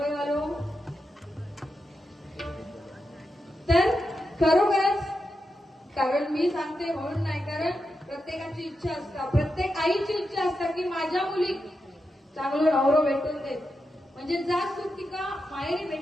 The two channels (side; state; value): both; normal; correlation 0.87